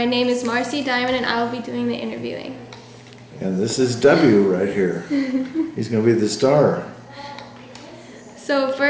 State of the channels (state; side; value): identical; both; correlation 1.00